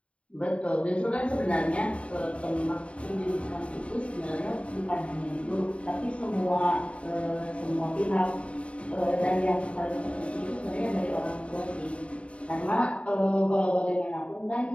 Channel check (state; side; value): late; right; 0.061 ms